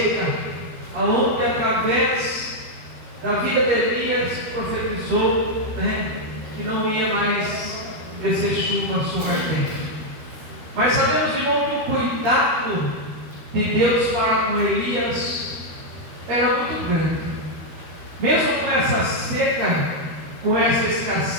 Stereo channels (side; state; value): left; late; 13 ms